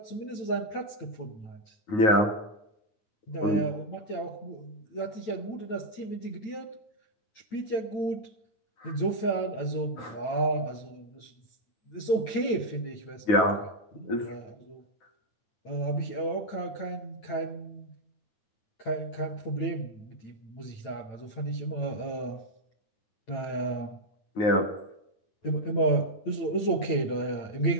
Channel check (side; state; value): right; late; 9.0 ms